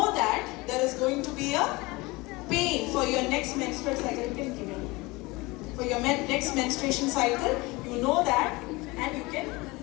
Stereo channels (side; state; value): right; quieter; 23.1 dB